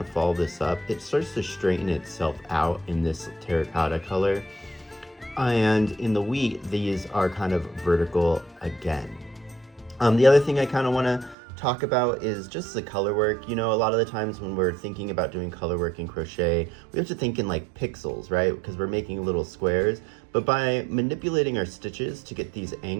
follow this up, it starts to straighten itself out in this terracotta color. And in the wheat, these are kind of vertical again. The other thing I kind of want to talk about is just the color work. You know, a lot of the times when we're thinking about doing color work in crochet, we have to think in like pixels, right? Because we're making little squares. But by manipulating our stitches to get these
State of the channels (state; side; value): drops out; left; at 11.4 s